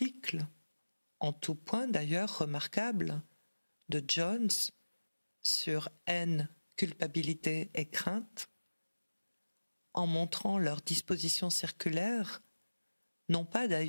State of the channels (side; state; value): both; inverted; correlation -1.00